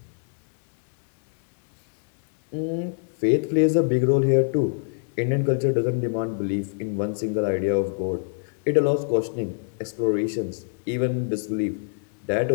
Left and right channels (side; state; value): right; silent; digital silence